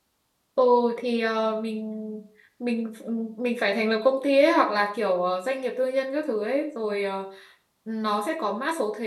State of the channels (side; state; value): both; identical; correlation 1.00